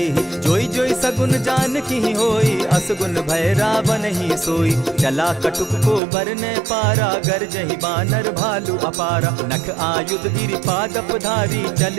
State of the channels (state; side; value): drops out; left; at 6.0 s